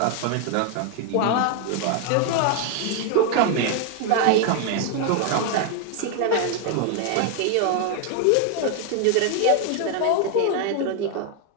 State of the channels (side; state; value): both; different; correlation 0.00